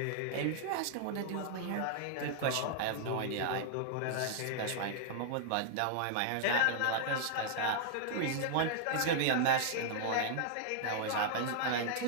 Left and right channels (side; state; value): both; different; correlation -0.01